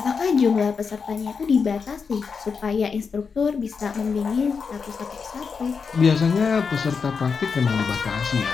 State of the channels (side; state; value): right; quieter; 5.6 dB